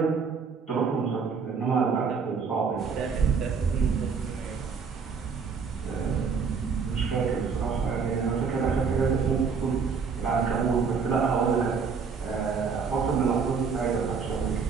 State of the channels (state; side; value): quieter; left; 5.6 dB